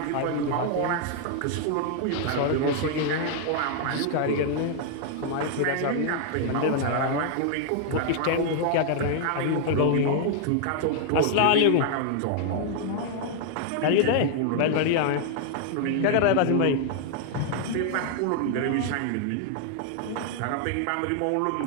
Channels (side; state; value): both; different; correlation 0.00